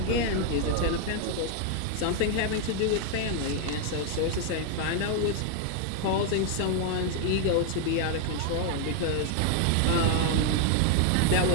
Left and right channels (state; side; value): different; both; correlation 0.00